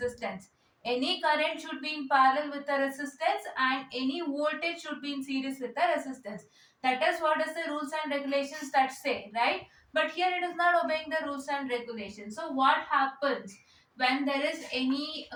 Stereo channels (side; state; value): both; identical; correlation 1.00